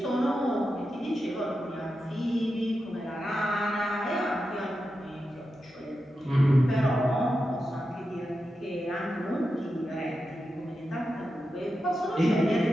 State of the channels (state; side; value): normal; both; correlation 0.89